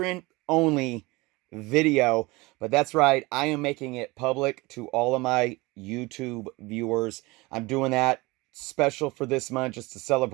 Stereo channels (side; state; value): left; quieter; 23.2 dB